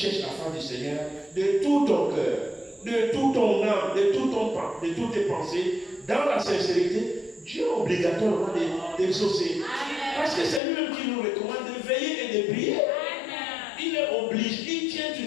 la face du Seigneur, de tout ton cœur, de tout ton âme, de toutes tes pensées, dans la sincérité, Dieu est obligatoirement d'exaucer. Parce que c'est lui-même qui nous recommande de veiller et de prier. Il est obligé, il tient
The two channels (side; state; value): right; drops out; at 10.6 s